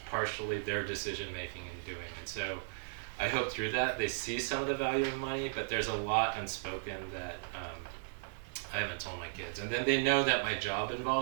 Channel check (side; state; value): left; silent; 54 dB below the other